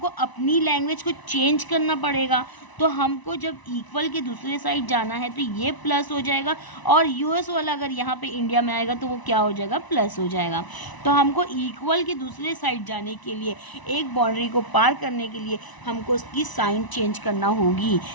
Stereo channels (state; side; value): late; right; 1.0 ms